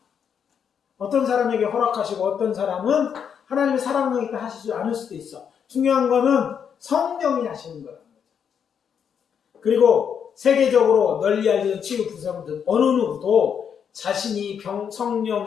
어떤 사람에게 허락하시고 어떤 사람은 하나님의 사랑력이 하시지 않을 수도 있어. 중요한 거는 성령이 하시는 거라는 거죠. 그리고 세계적으로 널리 알려진 치유 부서들 어느 누구도 자신이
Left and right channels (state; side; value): quieter; right; 7.6 dB